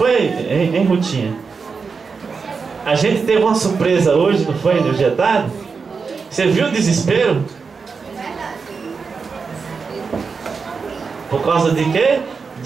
hein, Rutinha? A gente teve uma surpresa hoje, não foi, no dia tarde? Você viu o desespero? Por causa de quê?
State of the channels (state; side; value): quieter; left; 5.1 dB